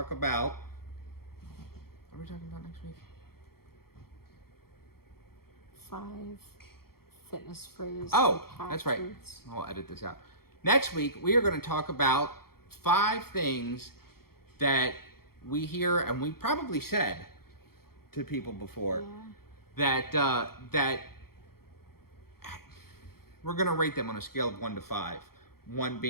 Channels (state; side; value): late; right; 0.94 ms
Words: about, what are we talking about next week? 5 fitness phrases. Oh, that's right. I'll edit this out. Next week, we are going to talk about 5 things that we hear, and we probably said to people before, that we're going to rate them on a scale of 1 to 5. 1